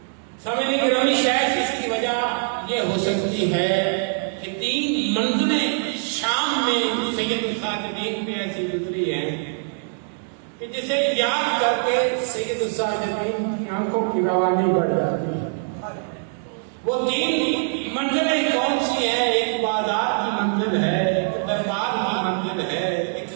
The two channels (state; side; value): silent; left; digital silence